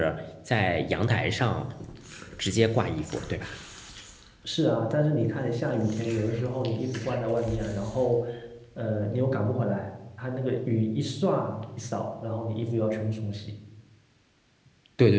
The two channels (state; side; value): identical; both; correlation 1.00